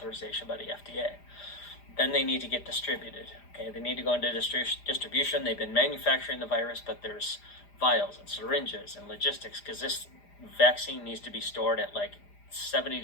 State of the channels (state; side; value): late; right; 4.9 ms